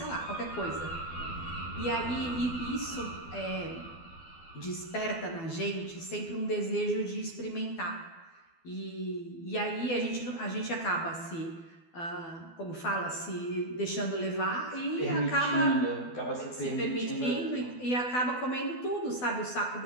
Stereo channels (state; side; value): late; right; 12 ms